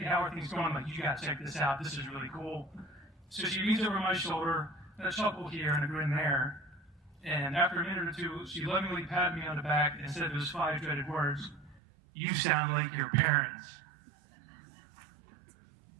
me, how are things going? I'm like, you gotta check this out. This is really cool. So she leans over my shoulder, and a chuckle here and a grin there. And after a minute or two, she lovingly patted me on the back and said those 5 dreaded words, "You sound like your parents."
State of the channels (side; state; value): left; drops out; at 11.8 s